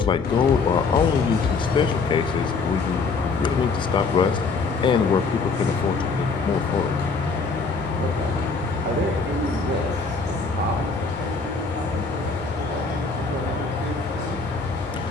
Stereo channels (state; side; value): quieter; right; 4.4 dB